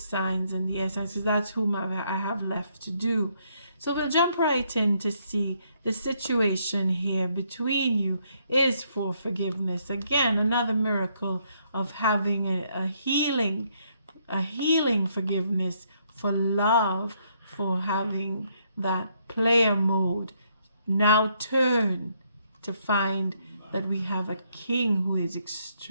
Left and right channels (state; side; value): inverted; both; correlation -0.72